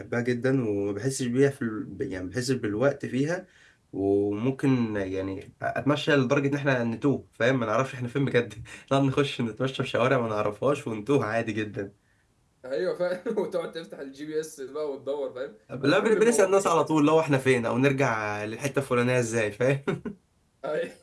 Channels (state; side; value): identical; both; correlation 1.00